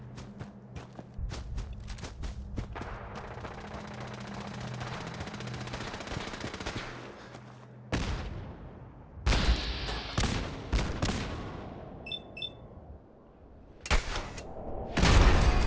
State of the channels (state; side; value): identical; both; correlation 1.00